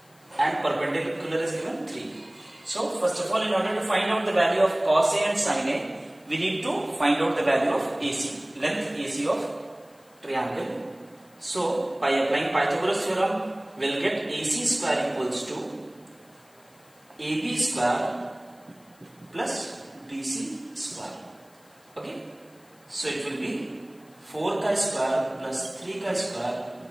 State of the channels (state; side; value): noise; left; hiss, 30 dB below the sound